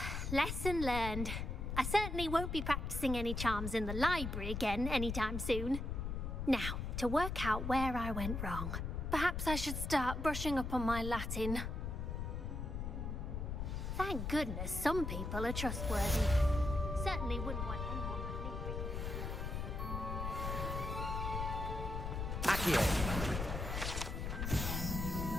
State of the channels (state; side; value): noise; left; rumble, 3 dB below the sound